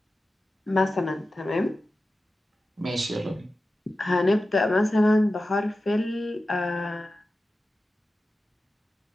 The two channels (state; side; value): normal; both; correlation 0.94